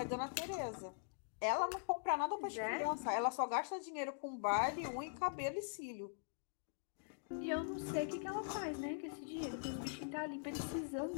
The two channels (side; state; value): right; silent; digital silence